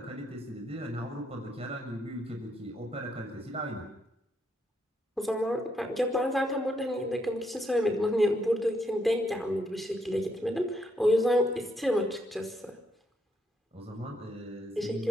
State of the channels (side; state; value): both; normal; correlation 0.76